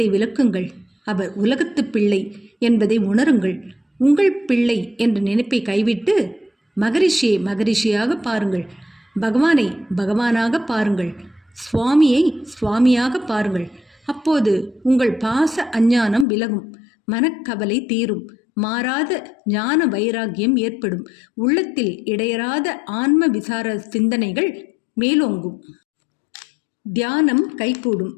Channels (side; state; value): right; drops out; at 16.2 s